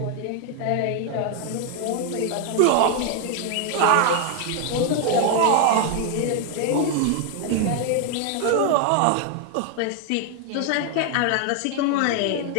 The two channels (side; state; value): both; different; correlation 0.00